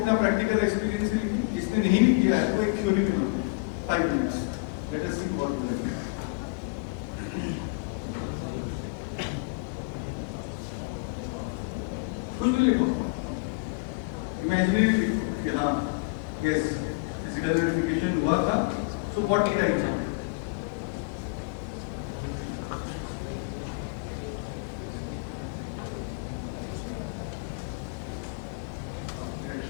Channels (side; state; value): right; quieter; 29.1 dB